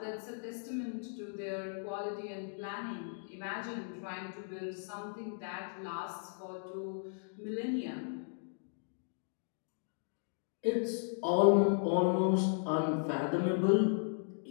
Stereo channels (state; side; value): silent; right; digital silence